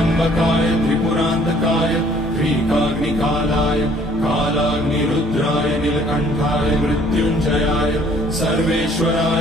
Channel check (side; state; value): both; normal; correlation 0.59